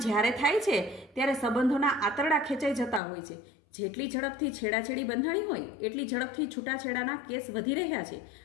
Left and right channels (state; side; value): drops out; right; at 3.0 s